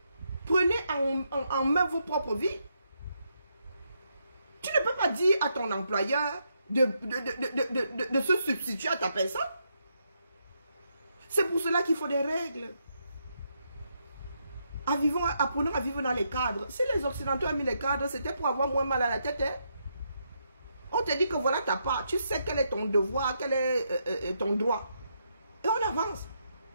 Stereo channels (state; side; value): inverted; both; correlation -0.79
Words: Prenez en main vos propres vies. Tu ne peux pas dire à ton employeur de se substituer à ta personne. C'est pour cela qu'il faut des règles. Apprenons à vivre dans les cadres. Si les Occidentaux ont mis les cadres, c'était pour avoir moins mal à la tête. Hein? On te dit que voilà ta part. Tu sais quel est ton devoir, quel est ton droit. Et on avance.